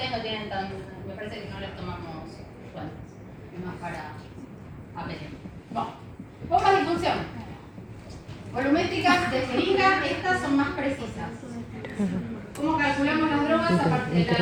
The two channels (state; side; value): identical; both; correlation 1.00